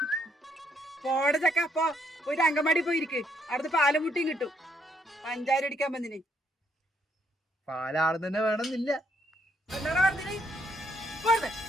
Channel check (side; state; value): both; normal; correlation 0.71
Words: പോടെ ചക്ക. അപ്പൊ ഒരു അങ്കമാടി പോയിരിക്ക്, അവിടുത്തെ പാലും മുട്ടിയും കിട്ടും. പഞ്ചായത്ത് അടിക്കാൻ വന്നിന് പാലാള് തന്നെ വേണമെന്നില്ല. എന്താ പറഞ്ഞിന്?